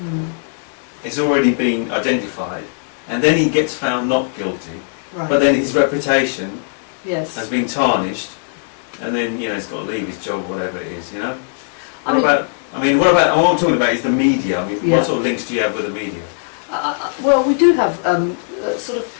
is already been identified, and then he gets found not guilty, Right. but then his reputation Yes. has been tarnished, and then, you know, he's got to leave his job, whatever it is, you know? I What I'm talking about is the media. I mean, Yeah. what sort of links do you have with the media? Well, we do have sort of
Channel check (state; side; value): silent; right; digital silence